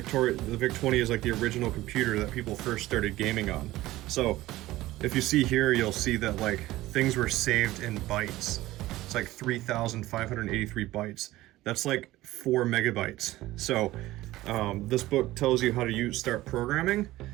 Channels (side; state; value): left; quieter; 16.9 dB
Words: VIC-20 is like the original computer that people first started gaming on. So if you see here, you'll see that like things were saved in bytes. It's like 3,583 bytes. That's like 4 megabytes. So this book tells you how to start programming,